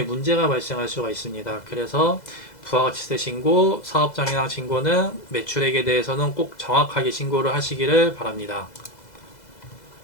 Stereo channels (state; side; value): late; right; 2.0 ms